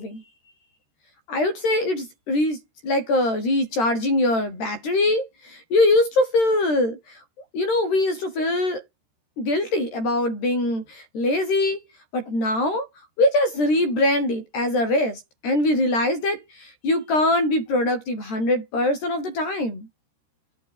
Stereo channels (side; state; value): right; late; 13 ms